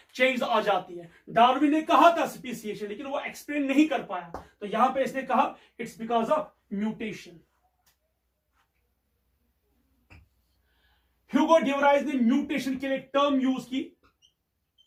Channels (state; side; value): identical; both; correlation 1.00